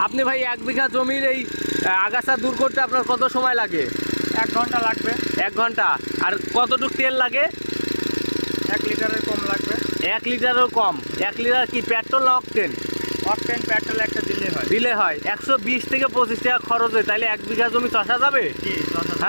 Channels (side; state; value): both; inverted; correlation -1.00